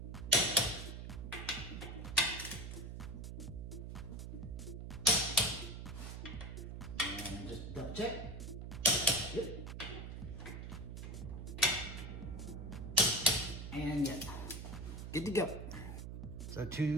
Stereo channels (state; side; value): noise; right; hum, 7 dB below the sound